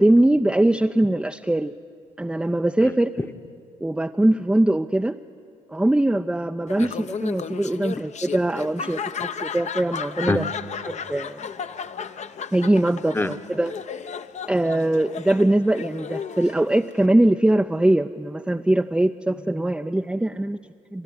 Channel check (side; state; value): both; normal; correlation 0.95